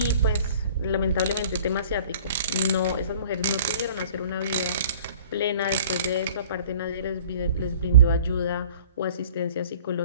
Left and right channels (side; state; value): both; inverted; correlation -0.49